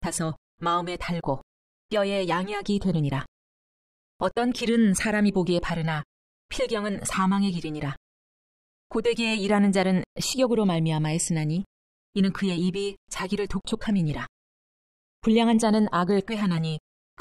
마음에 달고 뼈에 양약이 되느니라. 어떤 길은 사람이 보기에 바르나 필경은 사망의 길이니라. 고되게 일하는 자는 식욕으로 말미암아 애쓰나니 이는 그의 입이 자기를 독촉함이니라. 불량한 자는 악을 꾀하나니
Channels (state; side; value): identical; both; correlation 1.00